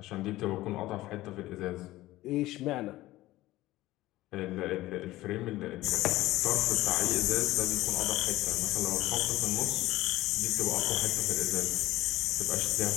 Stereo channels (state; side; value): quieter; right; 17.0 dB